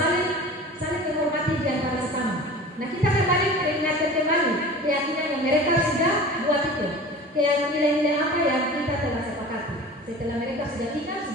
saling menghormati di antara sesama. Nah kita kembali mengingatkan kembali keyakinan yang mereka sudah buat itu. Nilai-nilai apa yang kita telah sepakati. Setelah mereka sudah ingat,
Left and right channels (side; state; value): both; normal; correlation 0.38